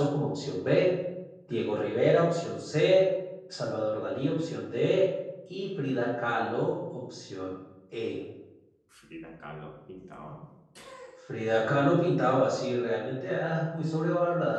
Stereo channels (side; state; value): both; identical; correlation 1.00